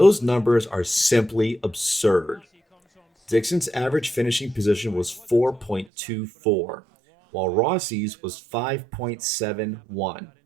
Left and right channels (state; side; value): drops out; left; at 5.9 s